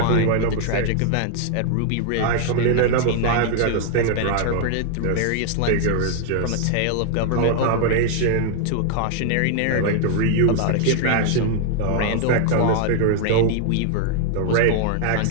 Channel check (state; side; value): different; both; correlation 0.00